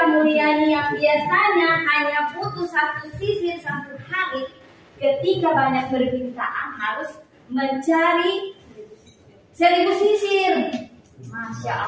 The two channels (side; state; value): both; identical; correlation 1.00